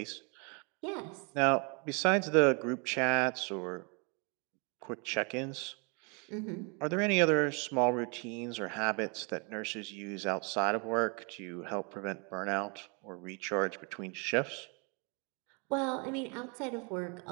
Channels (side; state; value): left; quieter; 33.8 dB